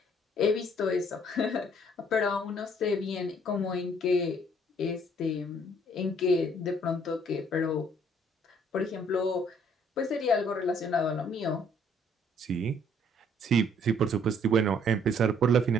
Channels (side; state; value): both; normal; correlation 0.62